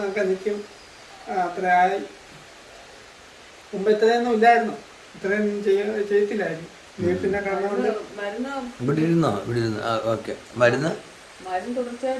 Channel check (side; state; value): both; identical; correlation 1.00